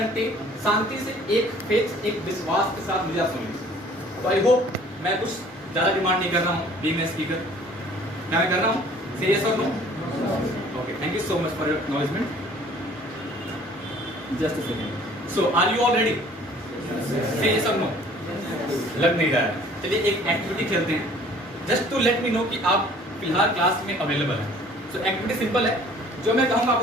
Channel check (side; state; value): both; normal; correlation 0.53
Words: शांति से, एक फेथ, एक विश्वास के साथ मुझे आप सुनिए। तो आई होप मैं कुछ ज़्यादा डिमांड नहीं कर रहा हूँ बीइंग अ स्पीकर। क्या मैं कर रहा हूँ? से यस और no? Okay, thank you so much for your acknowledgement. Just a second. So, are you all ready? Say yes or no. लग नहीं रहा है। चलिए एक एक्टिविटी खेलते हैं, just to let me know कि आप फिलहाल क्लास में अवेलेबल हैं। सो एक्टिविटी सिंपल है, जो मैं कहूँगा